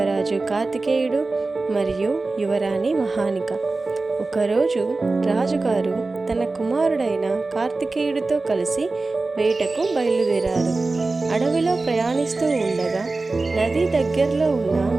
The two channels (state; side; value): quieter; left; 3.5 dB